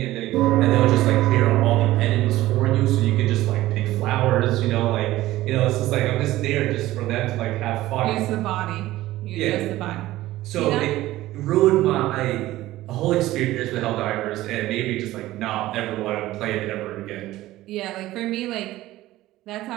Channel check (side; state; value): left; quieter; 16.2 dB